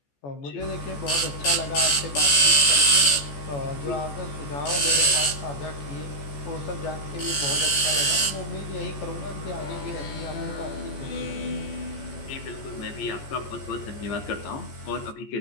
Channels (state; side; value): late; right; 14 ms